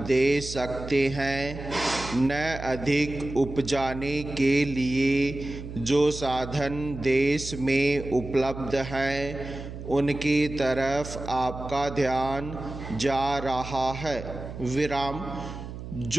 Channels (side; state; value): right; noise; hum, 10 dB below the sound